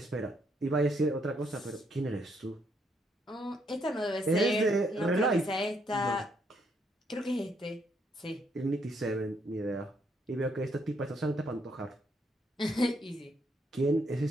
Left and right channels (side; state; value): both; normal; correlation 0.73